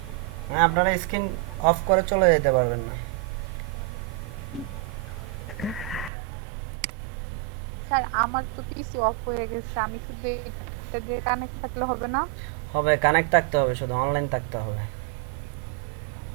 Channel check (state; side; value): drops out; left; at 6.1 s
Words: আপনারা স্ক্রিন অফ করে চলে যেতে পারবেন না। স্যার আমার তো পিসি অফ হয়ে গেছে, আমি শুধু এটা দিয়ে কানেক্ট থাকলে হবে না? হবে, কানেক্ট থাকতে হবে, শুধু অনলাইন থাকতে হবে।